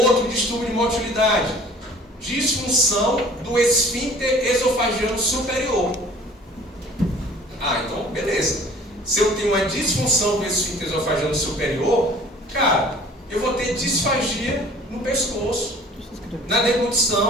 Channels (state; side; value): normal; both; correlation 0.50